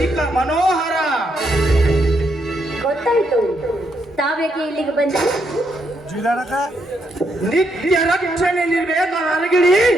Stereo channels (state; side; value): normal; both; correlation 0.77